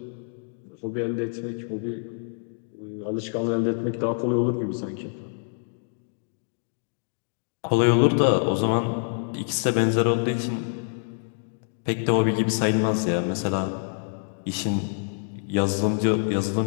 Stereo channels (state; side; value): silent; right; digital silence